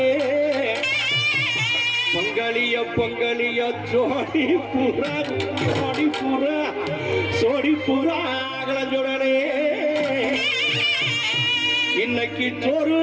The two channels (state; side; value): identical; both; correlation 1.00